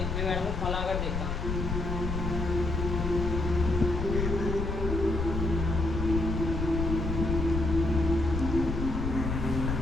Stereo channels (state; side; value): noise; left; rumble, 2 dB below the sound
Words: मैं मैडम को फोन लगाकर देखता हूँ।